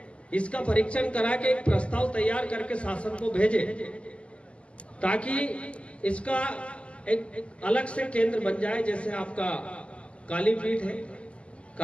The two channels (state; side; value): late; right; 0.057 ms